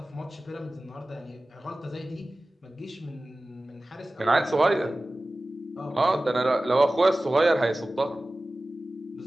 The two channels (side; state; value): both; normal; correlation 0.97